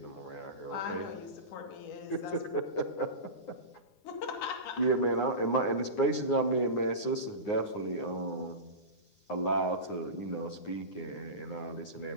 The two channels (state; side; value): late; right; 9.7 ms